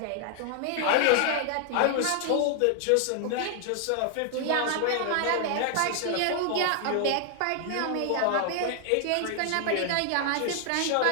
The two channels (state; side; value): different; both; correlation 0.00